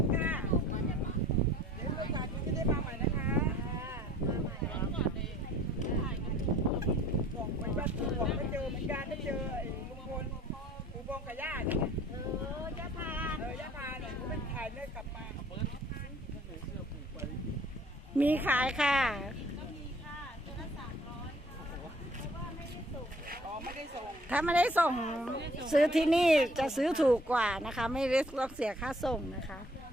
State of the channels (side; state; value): both; normal; correlation 0.56